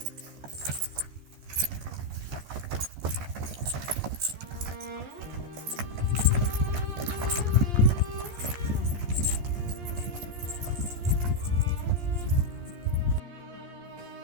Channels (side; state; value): left; late; 14 ms